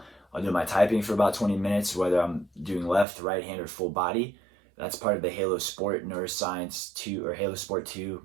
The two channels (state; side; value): drops out; left; at 3.1 s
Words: I'll do my typing for about 20 minutes, whether I'm doing left, right hand, or full body. That's part of the Halo Sport Neuroscience 2, or Halo Sport 2,